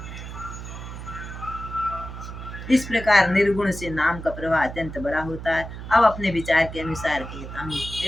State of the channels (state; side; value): noise; right; hum, 10 dB below the sound